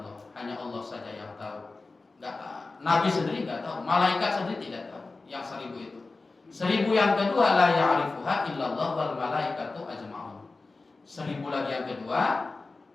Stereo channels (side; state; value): right; quieter; 3.6 dB